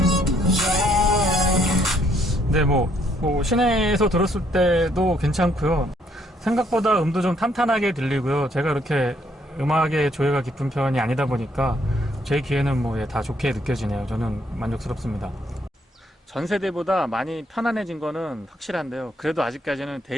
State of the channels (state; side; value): normal; both; correlation 0.69